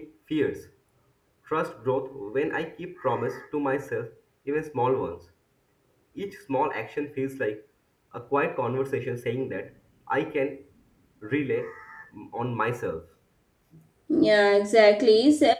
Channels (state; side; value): identical; both; correlation 1.00